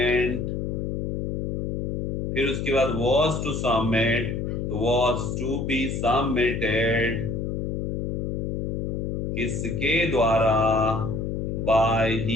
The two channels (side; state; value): left; noise; hum, 2 dB below the sound